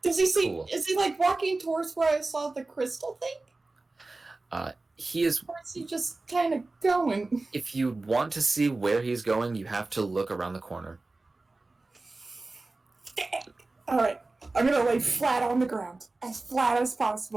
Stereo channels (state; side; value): quieter; left; 3.3 dB